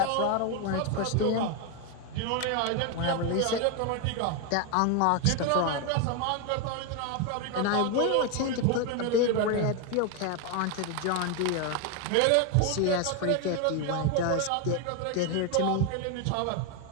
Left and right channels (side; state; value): both; different; correlation 0.01